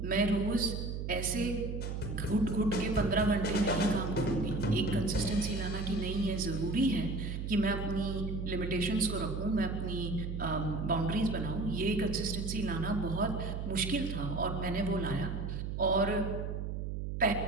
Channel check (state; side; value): noise; right; hum, 4 dB below the sound